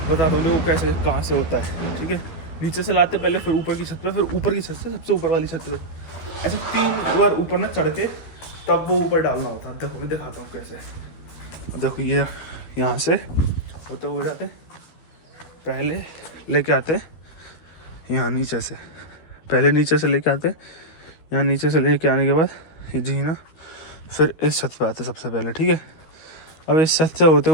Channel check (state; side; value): late; right; 13 ms